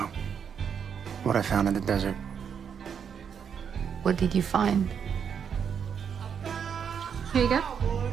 what I found in the desert. What did you find? Here you go.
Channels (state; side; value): quieter; left; 7.4 dB